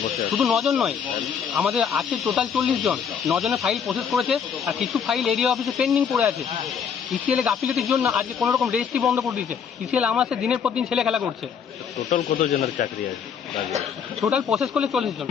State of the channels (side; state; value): right; quieter; 7.2 dB